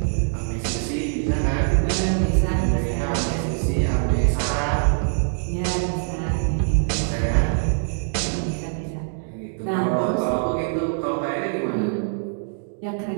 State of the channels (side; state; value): left; silent; digital silence